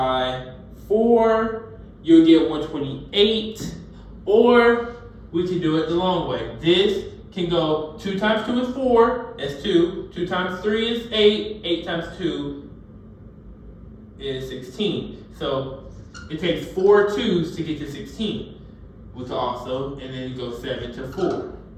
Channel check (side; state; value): both; identical; correlation 1.00